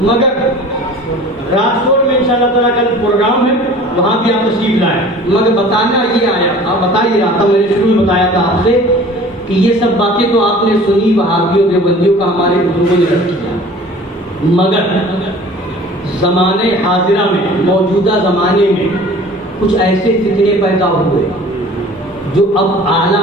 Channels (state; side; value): normal; both; correlation 0.45